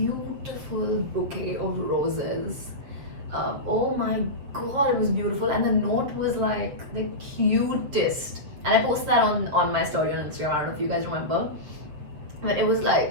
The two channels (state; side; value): late; left; 7.5 ms